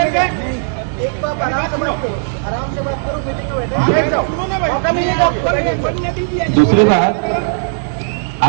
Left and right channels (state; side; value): silent; left; digital silence